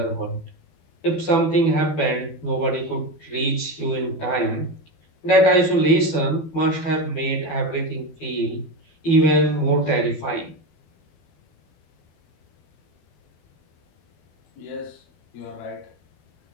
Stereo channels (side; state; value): right; late; 12 ms